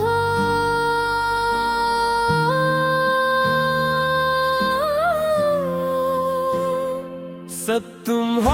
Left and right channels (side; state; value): both; identical; correlation 1.00